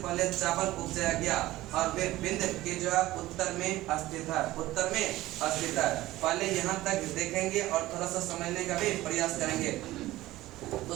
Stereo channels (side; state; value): left; quieter; 16.8 dB